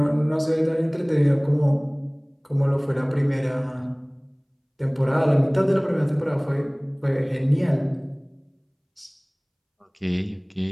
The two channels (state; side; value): identical; both; correlation 1.00